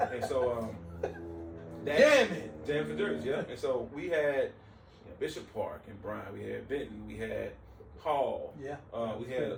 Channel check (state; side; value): identical; both; correlation 1.00